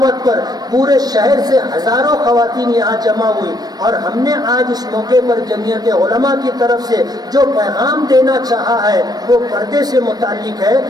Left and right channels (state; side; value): late; left; 0.19 ms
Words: پر پورے شہر سے ہزاروں خواتین یہاں جمع ہوئی. اور ہم نے آج اس موقع پر جمعیت علماء کی طرف سے جو پیغام دینا چاہا ہے وہ پردے سے متعلق ہے.